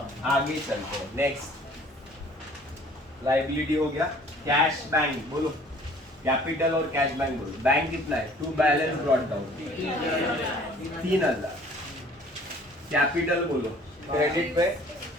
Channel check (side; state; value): both; normal; correlation 0.53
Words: आगे चलते हैं. नेक्स्ट लाइबिलिटी हो गया. कैश बैंक बोलो. कैपिटल और कैश बैंक बोलो. बैंक कितना है? To balance brought down 3,000. Capital बोलो. क्रेडिट पे